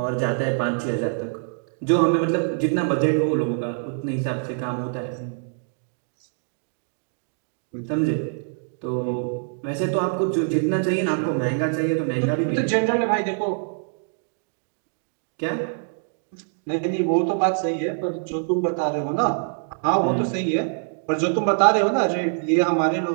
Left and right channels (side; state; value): left; silent; digital silence